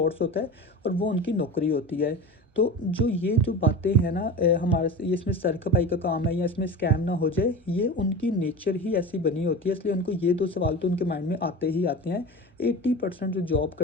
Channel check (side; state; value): both; normal; correlation 0.30